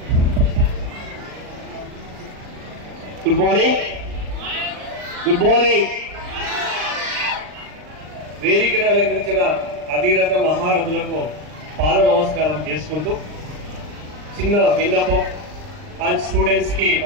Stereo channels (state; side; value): late; left; 39 ms